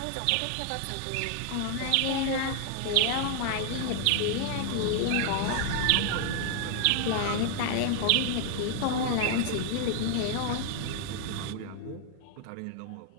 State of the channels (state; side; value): different; both; correlation 0.00